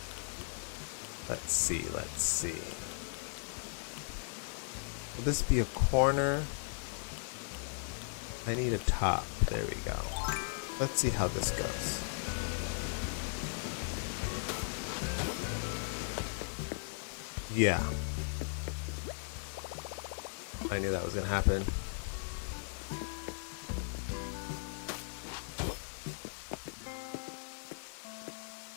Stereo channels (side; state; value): right; silent; digital silence